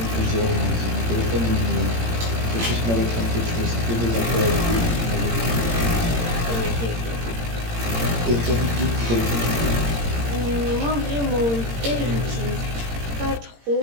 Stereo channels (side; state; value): left; late; 17 ms